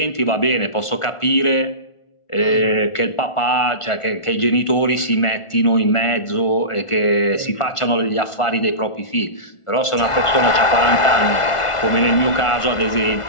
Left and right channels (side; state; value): right; late; 1.4 ms